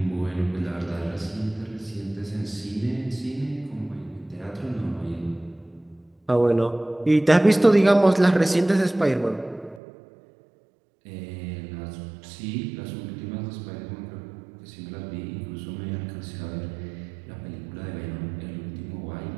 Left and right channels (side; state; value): left; drops out; at 9.8 s